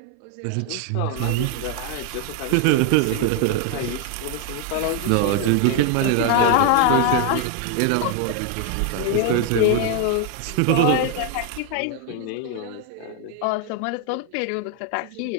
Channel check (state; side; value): different; both; correlation 0.01